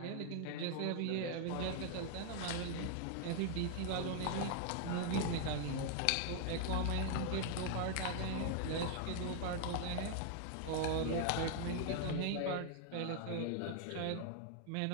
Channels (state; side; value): different; both; correlation 0.00